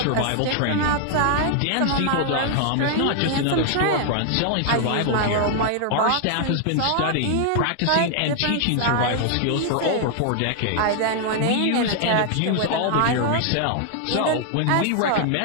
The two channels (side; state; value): both; different; correlation 0.00